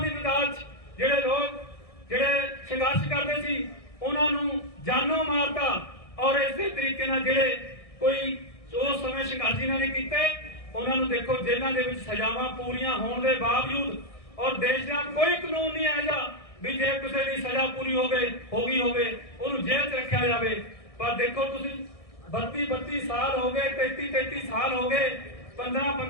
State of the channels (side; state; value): right; late; 1.6 ms